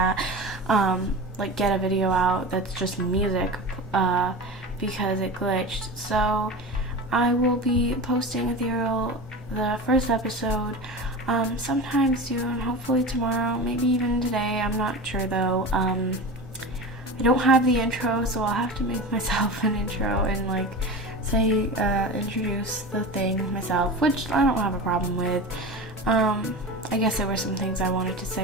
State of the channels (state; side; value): normal; both; correlation 0.29